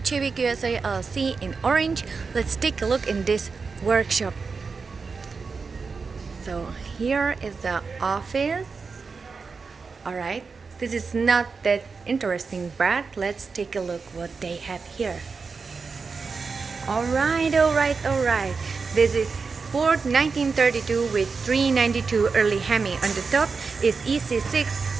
Chavik USA LLC in Orange. Let's take a look in this workshop. So here is the office. Alright, this is not that interesting, but let's take a look what they have here. Alright. This is Ford 1932 with 392 early Hemi. On the top is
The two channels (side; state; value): left; quieter; 4.8 dB